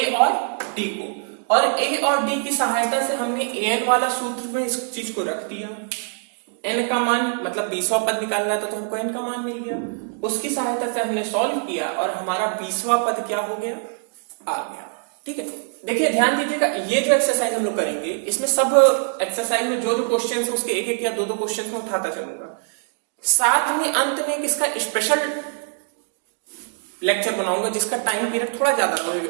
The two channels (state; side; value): silent; left; 56 dB below the other